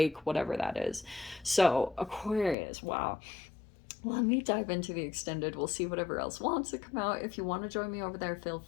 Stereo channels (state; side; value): drops out; right; at 2.6 s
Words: whatever that is. So Aquarius, wow. Let me dive into the extended. We'll see whatever else wants to come out. If you want to join me over there, feel